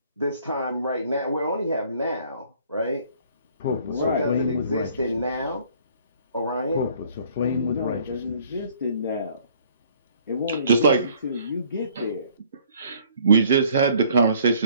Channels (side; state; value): both; inverted; correlation -0.59